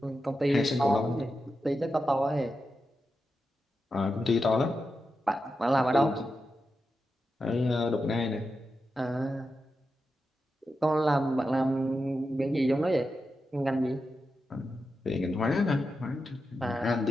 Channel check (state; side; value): normal; both; correlation 0.89